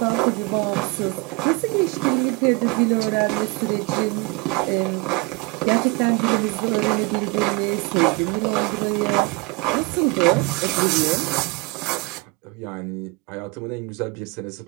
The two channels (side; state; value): left; quieter; 26.3 dB